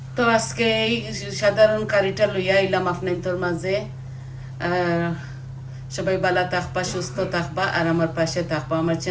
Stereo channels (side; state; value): both; identical; correlation 1.00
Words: তো আজকে এই সাধারণ কারিটা লইয়া আইলাম আপনাদের মাঝে। সবাই ভালো থাকবা, সুস্থ থাকবা, আর আমার পাশে থাকবা। আমার